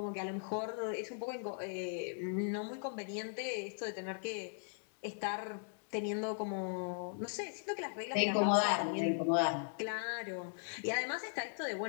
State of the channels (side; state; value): right; silent; digital silence